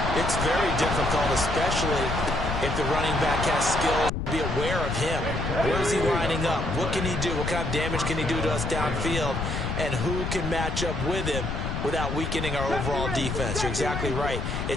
It's very difficult, especially if the running back has skills. Be aware of him. Where is he lining up? What can he do? What kind of damage can he do to us downfield? And who can match up with him without weakening our overall defense? You're exactly right.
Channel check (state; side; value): noise; left; rumble, 3 dB below the sound